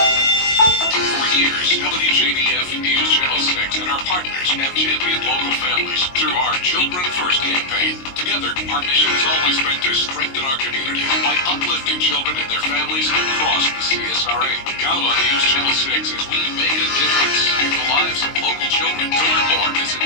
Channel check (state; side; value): late; right; 22 ms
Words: For years, WJBF News Channel 6 and our partners have championed local families through our Children First campaign. Together, our mission has always been to strengthen our community by uplifting children and their families across the CSRA. Count on News Channel 6 as we make a difference in the lives of local children. To learn more, visit